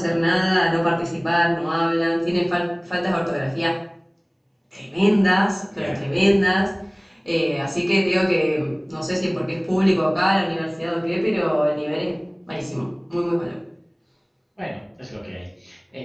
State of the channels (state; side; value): identical; both; correlation 1.00